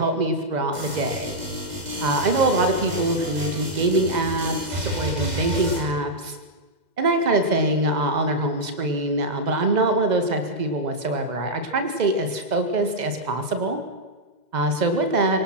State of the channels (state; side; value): late; left; 2.0 ms